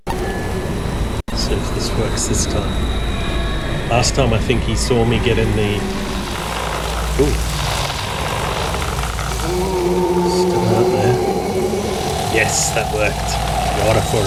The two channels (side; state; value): both; identical; correlation 1.00